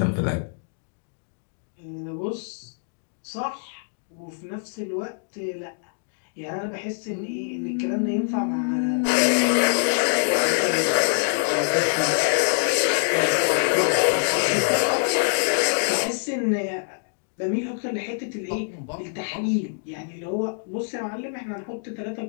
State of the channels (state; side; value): silent; right; digital silence